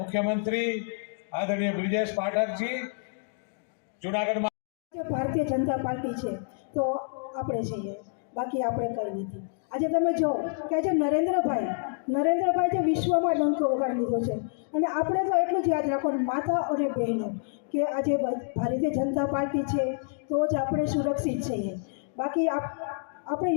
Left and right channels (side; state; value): right; silent; digital silence